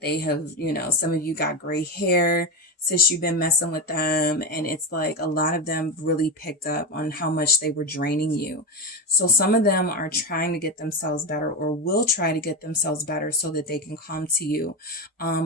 have, you know, some of you got gray hair since you've been messing with them. And it's like a lot of them really picked up on how much they were draining you. So some of them are trying to get themselves better, or will try to get themselves better so that they can come to you.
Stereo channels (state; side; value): normal; both; correlation 0.16